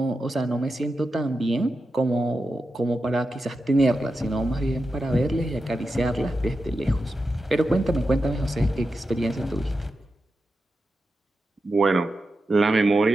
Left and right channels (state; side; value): normal; both; correlation 0.90